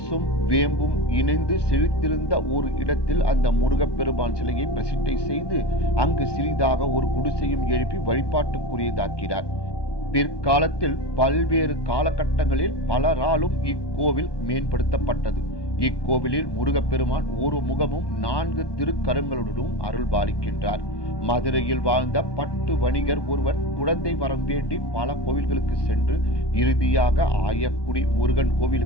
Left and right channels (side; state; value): right; late; 1.2 ms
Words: வேம்பும் இணைந்து செழித்திருந்த ஒரு இடத்தில் அந்த முருகப்பெருமான் சிலையை பிரசிட்டை செய்து அங்கு சிறிதாக ஒரு குடிசையும் எழுப்பி வழிபாட்டுக்குரியதாக்கிறார். பிற்காலத்தில் பல்வேறு காலகட்டங்களில் பலராலும் இக்கோவில் மேம்படுத்தப்பட்டது. இக்கோவிலில் முருகப்பெருமான் ஒரு முகமும் 4 திருக்கரங்களுடனும் அருள் பாலிக்கின்றார். மதுரையில் வாழ்ந்த பட்டு வணிகர் ஒருவர் குழந்தை வரம் வேண்டி பல கோவில்களுக்கு சென்று இறுதியாக ஆயக்குடி முருகன்